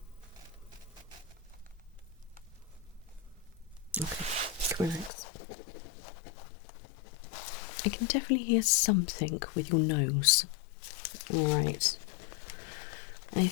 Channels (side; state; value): right; drops out; at 5.1 s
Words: Okay, relax. I can definitely hear something with your nose. Alright. I